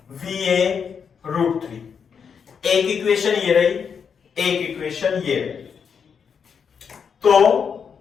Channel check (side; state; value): right; quieter; 6.7 dB